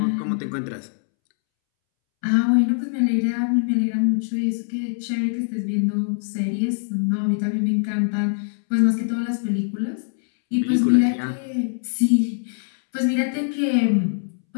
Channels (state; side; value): silent; right; 64 dB below the other